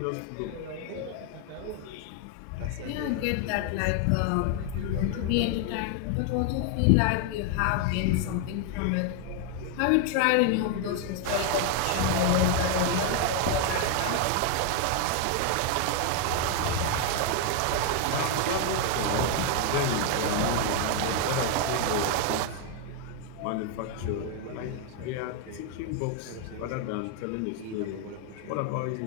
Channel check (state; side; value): different; both; correlation 0.00